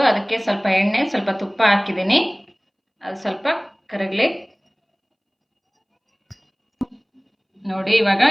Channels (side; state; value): both; identical; correlation 1.00